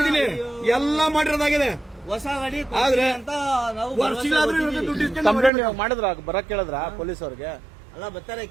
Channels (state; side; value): drops out; left; at 5.5 s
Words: ಎಲ್ಲ ಮಾಡಿರೋದಾಗಿದೆ. ಹೊಸ ಗಾಡಿ ಆದ್ರೆ ಅಂತ ನಾವು ಕಂಪ್ಲೇಂಟ್ ಮಾಡಿದ್ರ? ಬರಕ್ ಕೇಳಿದ್ರ ಪೊಲೀಸ್ ಅವ್ರಿಗೆ? ಅಲ್ಲ, ಬರ್ತಾರೆ,